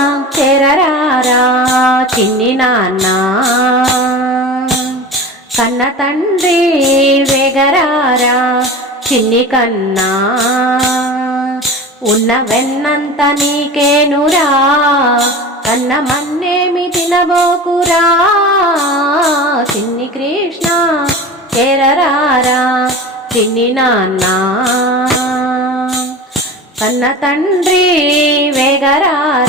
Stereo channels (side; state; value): both; normal; correlation 0.33